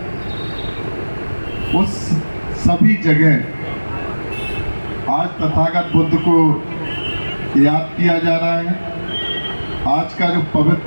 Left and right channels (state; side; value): inverted; both; correlation -1.00